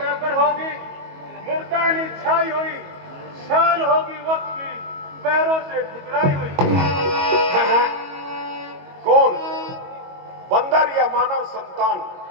पर होगी मुर्दानी छाई हुई, शान होगी वक्त की पैरों से ठुकराई हुई। कौन, बंदर या मानव संतान?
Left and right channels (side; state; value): left; late; 22 ms